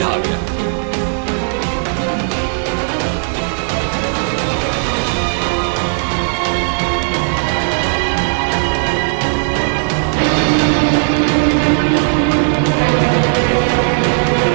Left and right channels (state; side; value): silent; left; 66 dB below the other